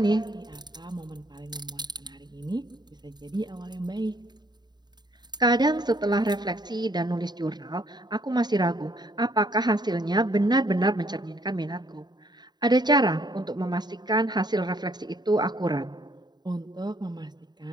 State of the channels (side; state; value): left; late; 0.20 ms